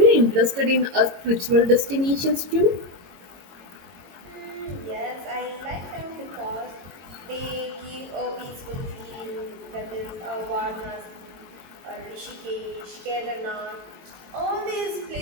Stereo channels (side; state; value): left; late; 22 ms